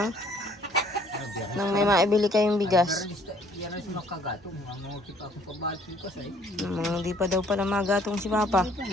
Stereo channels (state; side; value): normal; both; correlation 0.60